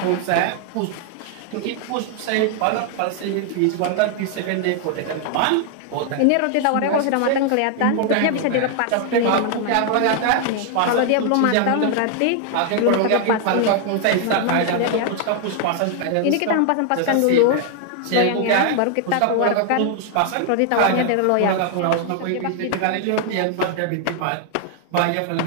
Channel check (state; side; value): different; both; correlation 0.00